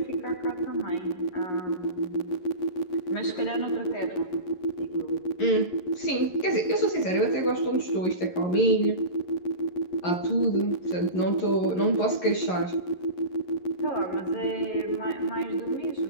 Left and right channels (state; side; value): late; right; 11 ms